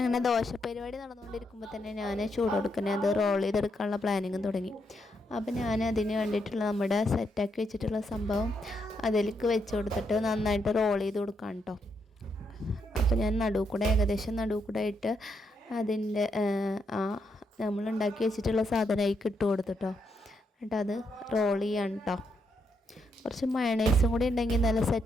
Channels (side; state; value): both; normal; correlation 0.79